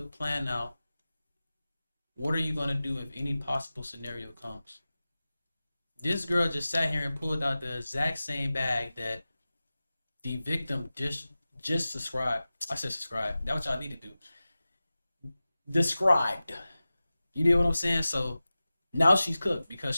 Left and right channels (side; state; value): both; inverted; correlation -0.96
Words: plan out what are you going to do if any possible scenario comes. This girl just sat here and pulled out the exact same bag that the victim just described. I said subscribe. That's what y'all need to do. Described. You know what I'm saying? So Now she's cooked because